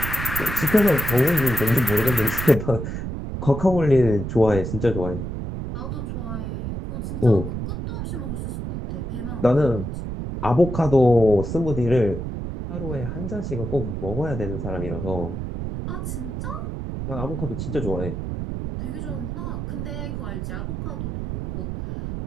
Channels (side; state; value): right; noise; rumble, 5 dB below the sound